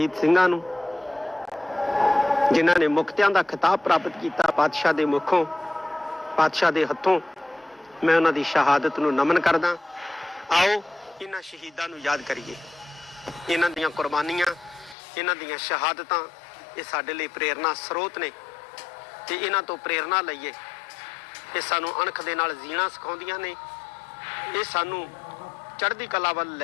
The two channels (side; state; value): right; drops out; at 15.0 s